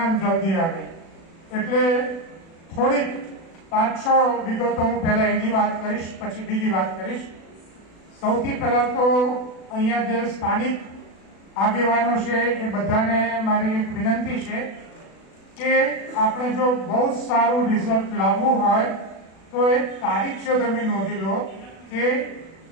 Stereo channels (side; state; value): right; late; 36 ms